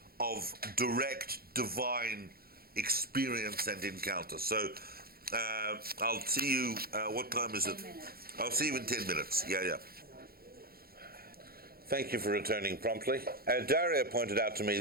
of direct divine experience and encounter. So I'll see you, what time is it? 10 minutes. I'll see you in 10 minutes. Yeah. Thank you for returning promptly. Daria pointed out to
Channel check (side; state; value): left; late; 0.44 ms